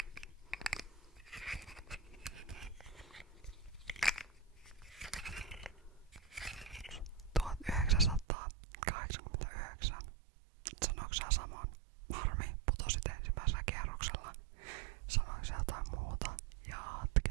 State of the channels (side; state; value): left; drops out; at 8.2 s